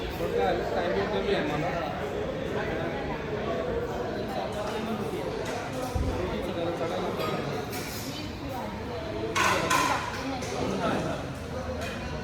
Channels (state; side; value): identical; both; correlation 1.00